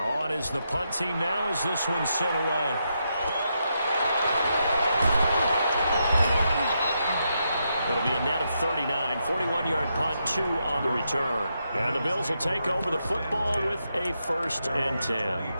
is the punt team now as this one's sent away. It'll be a net of 39, 41-yard punt, 2 on the return. And the Bills will take over the football with a 1st and 10.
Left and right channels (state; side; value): inverted; both; correlation -0.82